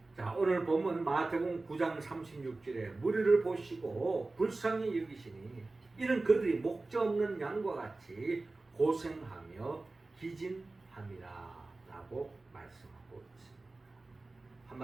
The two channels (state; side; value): quieter; left; 3.3 dB